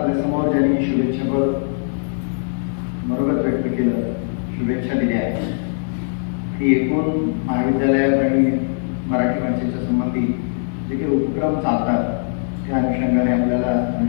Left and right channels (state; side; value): silent; right; 65 dB below the other